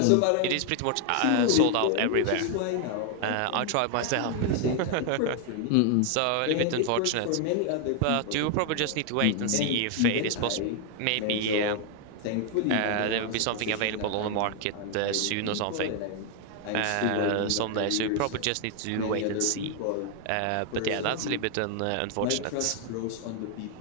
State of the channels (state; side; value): different; both; correlation 0.00